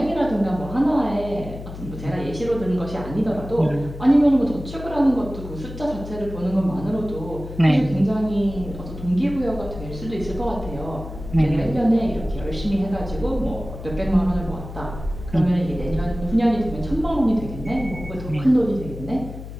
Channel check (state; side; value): noise; left; hum, 11 dB below the sound